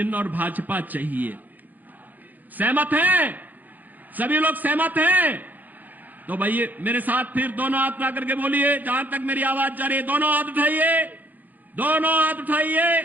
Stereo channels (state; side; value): late; left; 0.083 ms